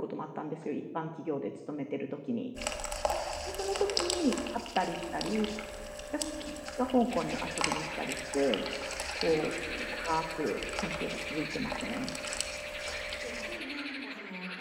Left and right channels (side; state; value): both; identical; correlation 1.00